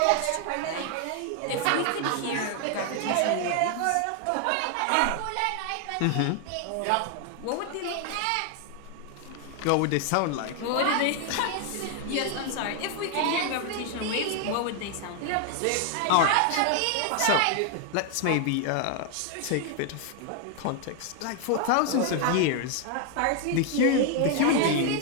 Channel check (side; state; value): both; different; correlation 0.00